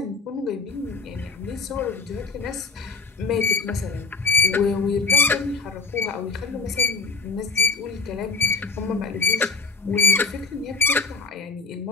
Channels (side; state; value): right; quieter; 4.3 dB